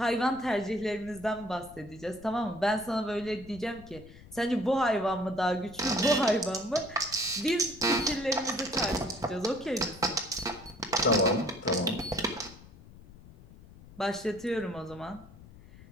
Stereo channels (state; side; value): noise; left; rumble, 20 dB below the sound